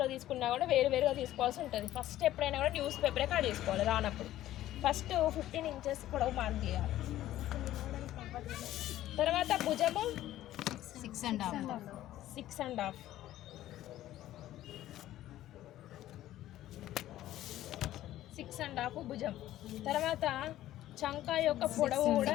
తీసుకున్నా కూడా వేరువేరుగా తీసుకోవాల్సి ఉంటుంది. ఫస్ట్ ఎప్పుడైనా కూడా న్యూస్ పేపరే కట్ చేసుకోవాలి రానప్పుడు. ఫస్ట్ 15 ఇంచెస్ పొడవు మార్క్ చేయాలి. తర్వాత భుజము 6.5 6.5 భుజం. తర్వాత చంక యొక్క పొడవు కూడా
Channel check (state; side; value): quieter; right; 13.8 dB